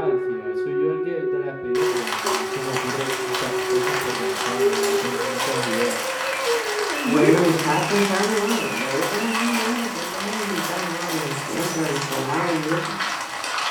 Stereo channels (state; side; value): identical; both; correlation 1.00